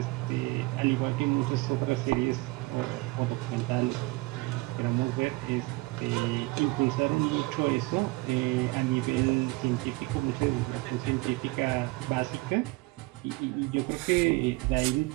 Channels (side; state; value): left; quieter; 23.3 dB